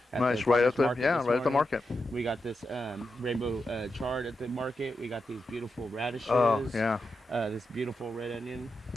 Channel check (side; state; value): both; normal; correlation 0.88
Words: Nice, right at the market. We got this rainbow chard at the market. We got these beautiful radishes. Oh, yeah. This beautiful red onion.